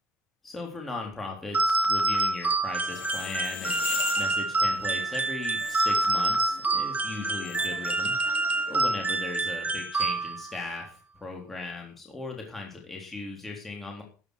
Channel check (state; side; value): normal; both; correlation 0.56